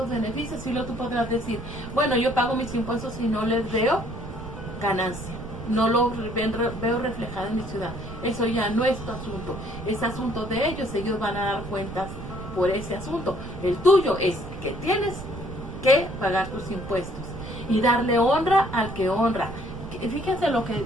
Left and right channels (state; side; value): noise; right; rumble, 10 dB below the sound